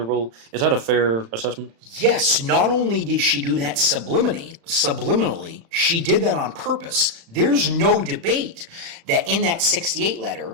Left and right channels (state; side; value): late; left; 35 ms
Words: Is that a fair assessment? Yes, not only did she do that subliminally, she did that on purpose. There's no debate that in that 68